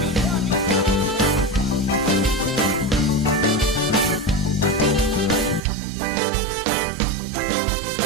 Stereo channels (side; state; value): left; drops out; at 5.6 s